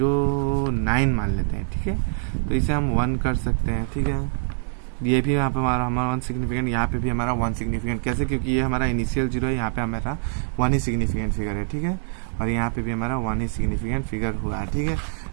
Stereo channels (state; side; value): silent; left; 62 dB below the other